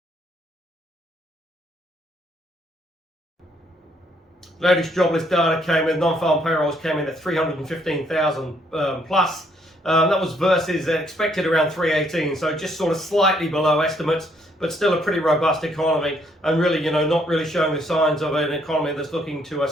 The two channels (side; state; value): both; normal; correlation 0.69